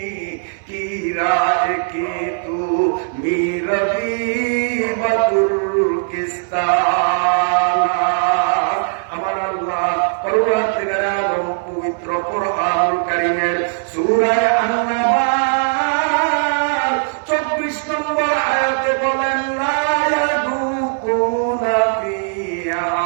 কি রাজ কি তু মিরবি বতুর্কিস্তান। আমার আল্লাহ পরবর্তীকার আলম পবিত্র কুরআনুল কারীমের সূরা আন-নাবা 24 নম্বর আয়াতে বলেন, লা ইয়াদুকুনা ফিহা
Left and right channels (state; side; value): silent; left; 63 dB below the other